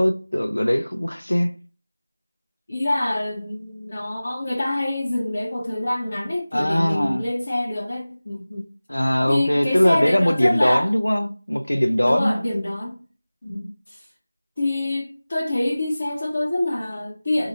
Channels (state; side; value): inverted; both; correlation -0.98